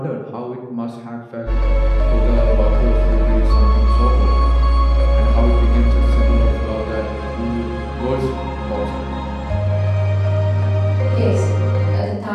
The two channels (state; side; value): identical; both; correlation 1.00